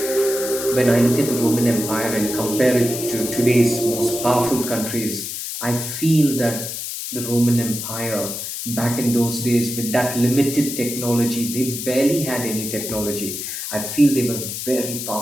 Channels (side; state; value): left; noise; hiss, 6 dB below the sound